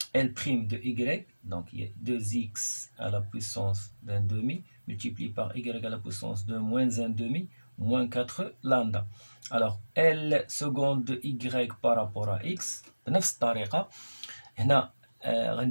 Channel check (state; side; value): inverted; both; correlation -1.00